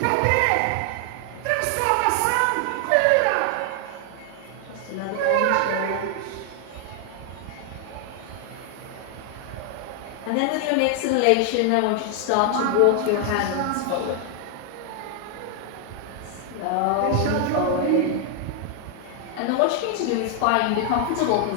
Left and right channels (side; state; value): both; different; correlation 0.00